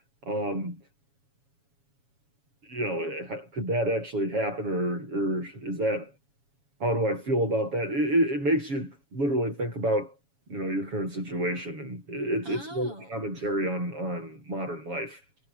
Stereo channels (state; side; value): late; left; 7.2 ms